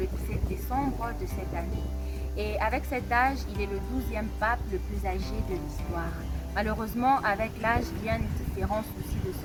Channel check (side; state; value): both; identical; correlation 1.00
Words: 17 décembre de cette année. Et avec cet âge, il est le 12e pape le plus âgé de l'histoire. Malheureusement, avec l'âge viennent différents soucis de